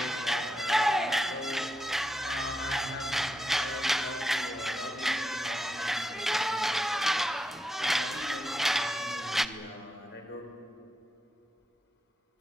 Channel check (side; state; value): both; normal; correlation 0.86